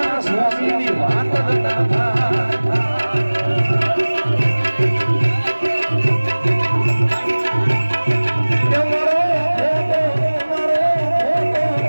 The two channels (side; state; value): both; inverted; correlation -1.00